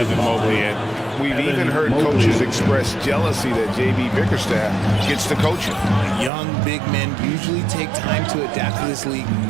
Mobley. And we've even heard coaches express jealousy that J.B. Bickerstaff gets to coach him. Young big men usually take time to adapt to this league,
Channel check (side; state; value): left; drops out; at 6.3 s